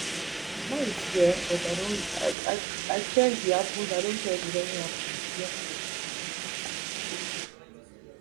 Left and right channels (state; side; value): drops out; left; at 2.4 s